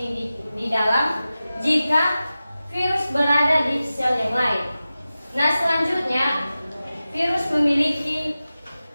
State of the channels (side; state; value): both; inverted; correlation -0.95